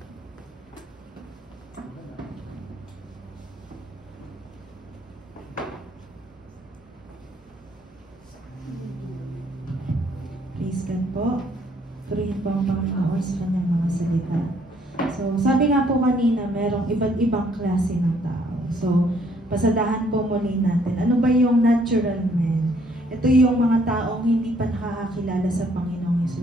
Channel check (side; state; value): both; normal; correlation 0.65